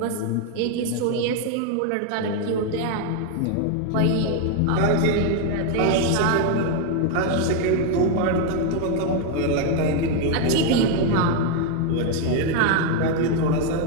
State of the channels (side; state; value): both; different; correlation 0.01